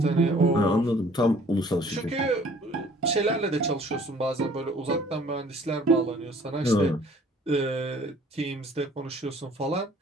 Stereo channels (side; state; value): both; normal; correlation 0.54